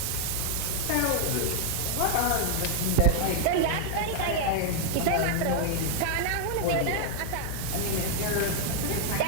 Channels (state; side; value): different; both; correlation 0.00